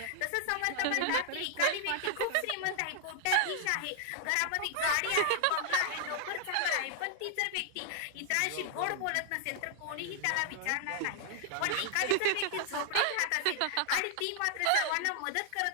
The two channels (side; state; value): both; different; correlation -0.01